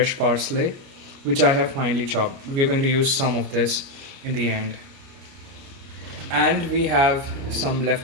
parsley, which I have finely chopped. We're going to use some of this in the end. And we have some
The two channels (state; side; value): late; left; 29 ms